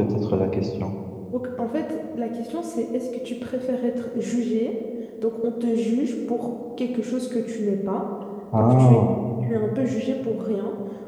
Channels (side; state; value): both; identical; correlation 1.00